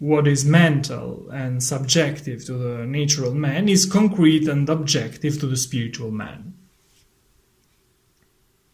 is mental and subjective to the natural man is concrete and objective to the spiritual man.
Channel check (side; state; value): both; identical; correlation 1.00